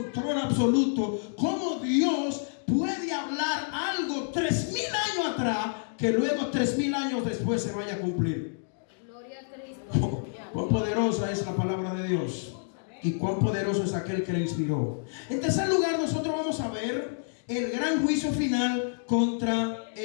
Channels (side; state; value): right; silent; digital silence